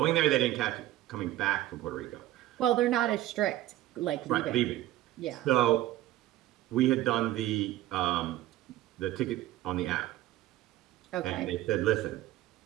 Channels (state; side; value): quieter; left; 14.8 dB